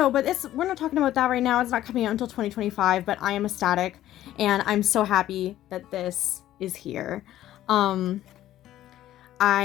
but we're not talking about that right now. It's not coming out until 2025, but I am ecstatic, and I'm so happy that this is here. I've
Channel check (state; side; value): quieter; right; 13.3 dB